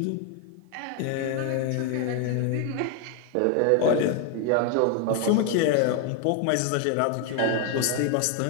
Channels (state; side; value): different; both; correlation 0.01